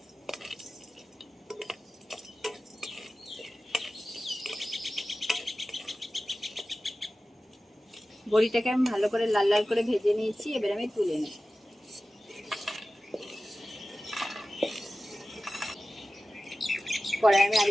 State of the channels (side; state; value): both; normal; correlation 0.95